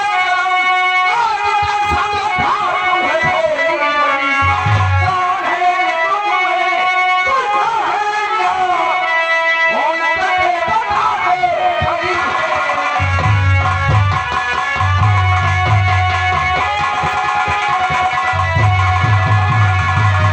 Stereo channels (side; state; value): both; identical; correlation 1.00